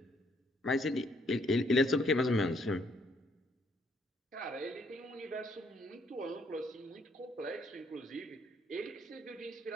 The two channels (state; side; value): normal; both; correlation 0.69